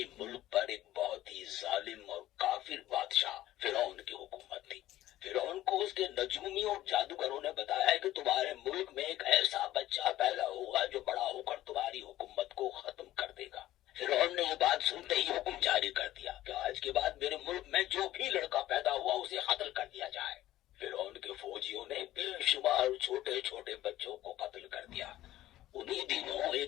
मुल्क पर एक बहुत ही जालिम और काफिर बादशाह फिरौन की हुकूमत थी। फिरौन को उसके नजूमी और जादूगरों ने बताया कि तुम्हारे मुल्क में एक ऐसा बच्चा पैदा होगा जो बड़ा होकर तुम्हारी हुकूमत को खत्म कर देगा। फिरौन ने ये बात सुनते ही हुक्म जारी कर दिया कि आज के बाद मेरे मुल्क में जो भी लड़का पैदा हुआ उसे कत्ल कर दिया जाए। फिरौन के फौजियों ने बेशुमार छोटे छोटे बच्चों को कत्ल कर दिया। उन्हीं दिनों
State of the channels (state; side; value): quieter; right; 14.7 dB